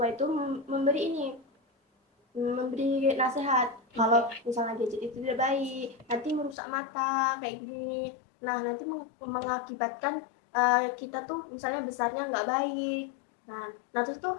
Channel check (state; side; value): drops out; right; at 6.6 s